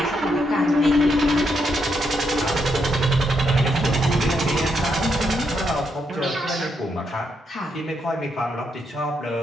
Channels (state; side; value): normal; both; correlation 0.79